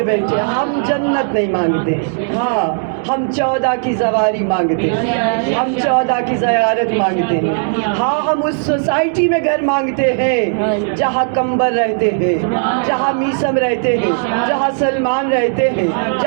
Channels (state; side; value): silent; left; digital silence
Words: بیٹھے۔ ہم جنت نہیں مانگتے، ہاں ہم 14 کی زواری مانگتے ہیں، ہم 14 کی زیارت مانگتے ہیں، ہاں ہم اس سوسائٹی میں گھر مانگتے ہیں جہاں کمبر رہتے ہیں، جہاں میسم رہتے ہیں، جہاں سلمان رہتے ہیں،